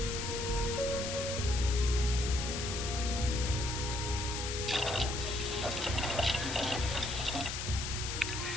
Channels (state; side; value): noise; left; hiss, 4 dB below the sound